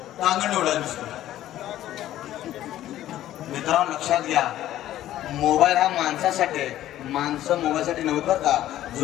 टांगण एवढा दिसतो. मित्रांनो लक्षात घ्या मोबाईल हा माणसासाठी आहे. माणसं मोबाईलसाठी नव्हतं बरं का.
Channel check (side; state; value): right; quieter; 13.3 dB